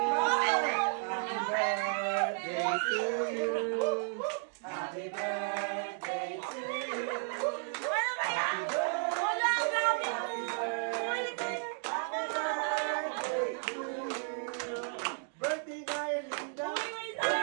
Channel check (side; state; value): left; silent; 56 dB below the other